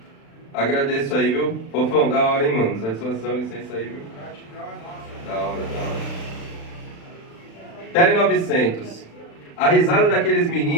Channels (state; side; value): late; right; 36 ms